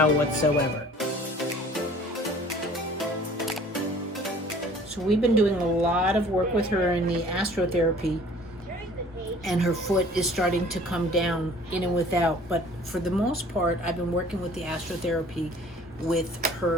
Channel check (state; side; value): normal; both; correlation 0.51